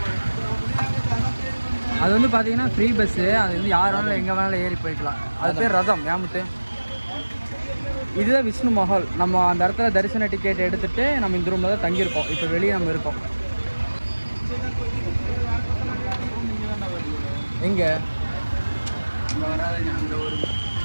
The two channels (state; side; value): inverted; both; correlation -1.00